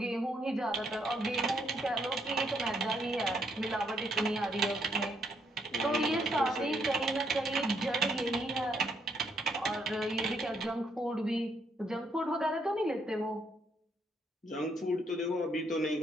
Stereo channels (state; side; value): normal; both; correlation 0.72